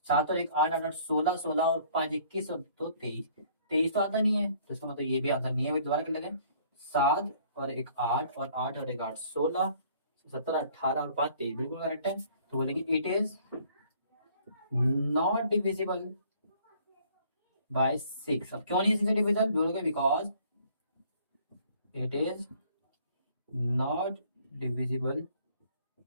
7 और 1 8 8 16 16 और 5 21 और 2 23। 23 तो आता नहीं है, तो इसका मतलब ये भी आंसर नहीं है। दोबारा कर लेते हैं। 7 और 1 8 और 8 और 1 8 16 17 18 और 5 23, बिल्कुल करेक्ट है। तो बोलेंगे it is not divisible by 6। अब क्यों नहीं 6 से डिविजिबल, बोलोगे because it is not divisible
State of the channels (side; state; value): both; inverted; correlation -0.58